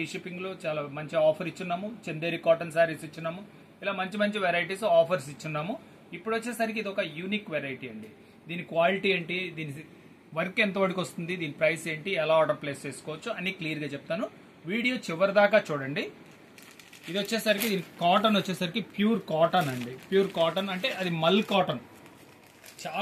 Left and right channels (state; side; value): identical; both; correlation 1.00